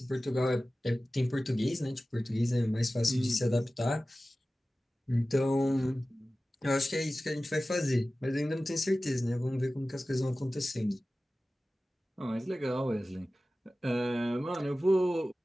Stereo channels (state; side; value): normal; both; correlation 0.96